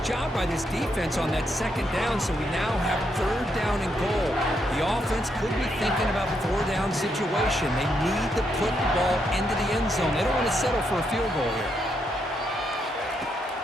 job by this defense on that second down, so we now have third down and goal. The offense could be thinking about the four-down situation. They need to put the ball into the end zone. They don't want to settle for a field goal here.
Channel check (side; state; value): both; normal; correlation 0.78